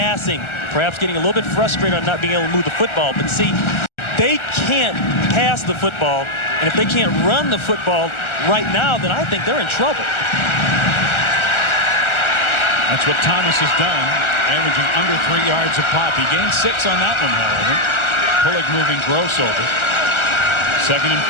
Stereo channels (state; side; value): late; right; 1.4 ms